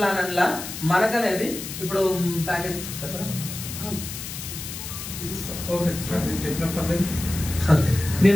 అట్లా మనకనేది ఇప్పుడు ప్యాకేజ్ ఓకే సార్, నేను చెప్పిన పర్లేదు.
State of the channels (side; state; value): left; noise; hiss, 9 dB below the sound